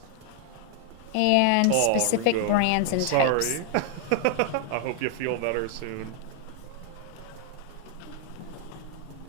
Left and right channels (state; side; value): different; both; correlation 0.00